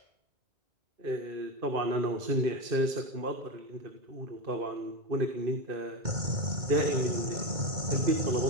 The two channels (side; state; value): left; late; 2.2 ms